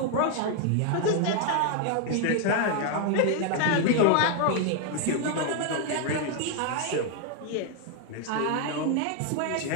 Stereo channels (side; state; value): both; different; correlation 0.00